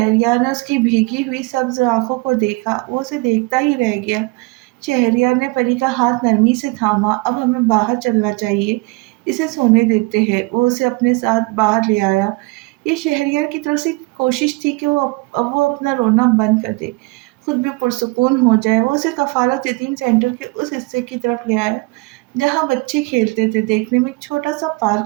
ने उसकी भीगी हुई सब्ज आंखों को देखा। वो उसे देखता ही रह गया। शहरयार ने परी का हाथ नरमी से थामा। अब हमें बाहर चलना चाहिए, इसे सोने देते हैं। वो उसे अपने साथ बाहर ले आया। ये शहरयार की तरफ से कोशिश थी कि वो अपना रोना बंद कर दे, खुद भी पुरसुकून हो जाए। वो उसे कफालत यतीम सेंटर के उस हिस्से की तरफ ले आया जहाँ बच्चे खेलते थे। देखने में एक छोटा सा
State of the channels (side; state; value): left; quieter; 24.7 dB